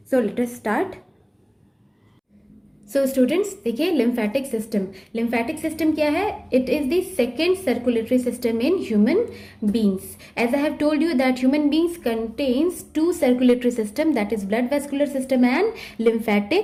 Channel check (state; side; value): identical; both; correlation 1.00